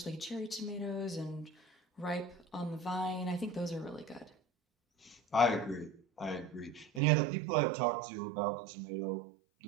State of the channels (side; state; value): left; drops out; at 7.0 s